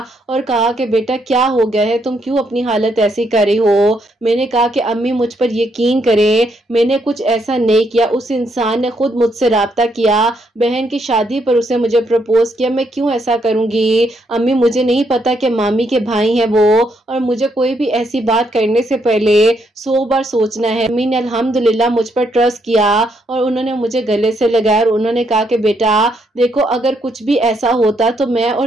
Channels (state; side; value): normal; both; correlation 0.75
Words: और कहा कि बेटा क्या हो गया है, तुम क्यों अपनी हालत ऐसी कर रही हो। मैंने कहा कि अम्मी मुझ पर यकीन करें, मैंने कुछ ऐसा नहीं किया, उस इंसान ने खुद मुझसे राब्ता किया, बहन की शादी पर उसे मुझे प्रपोज किया, मैं क्यों ऐसा करूंगी। अम्मी मुझे नहीं पता कि मामी के भाई हैं वो, और मुझे कोई भी ऐसी बात करने से पहले 100 बार सोचना है। अम्मी ने अल्हम्दुलिल्लाह मुझ पर ट्रस्ट किया और उन्होंने मुझे गले से लगाया और उन्होंने कहा कि बेटा देखो अगर कुछ भी ऐसा होता तो मैं और